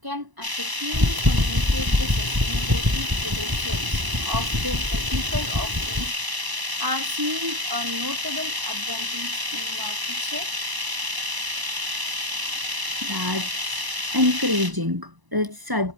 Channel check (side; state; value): left; late; 1.0 ms